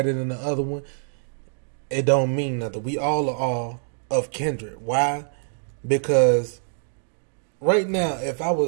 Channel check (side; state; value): left; silent; digital silence